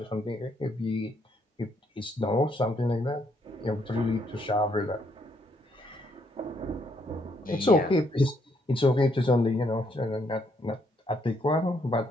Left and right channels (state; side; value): normal; both; correlation 0.72